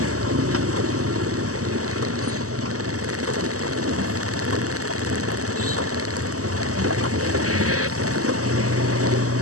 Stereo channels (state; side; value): late; left; 0.66 ms